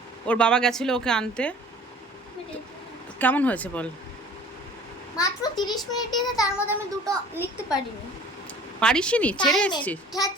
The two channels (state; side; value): normal; both; correlation 0.48